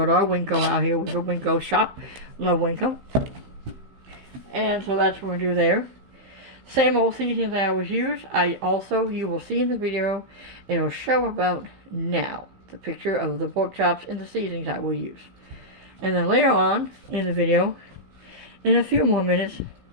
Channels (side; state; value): left; late; 16 ms